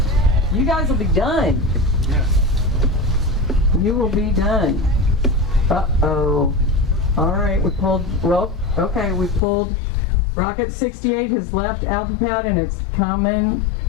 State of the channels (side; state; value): right; drops out; at 9.4 s